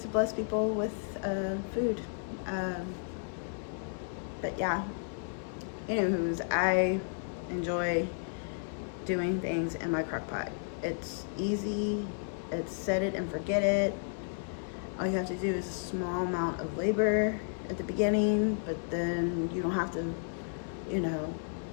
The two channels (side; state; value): right; silent; 56 dB below the other